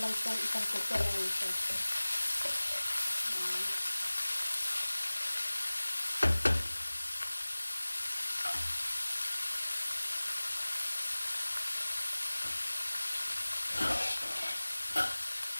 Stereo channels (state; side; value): inverted; both; correlation -1.00